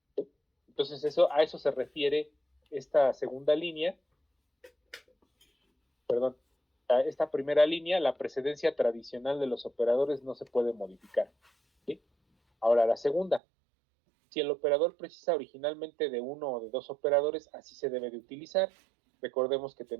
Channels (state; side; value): drops out; left; at 13.4 s